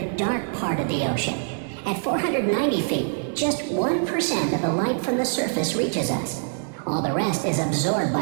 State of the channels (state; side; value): silent; left; digital silence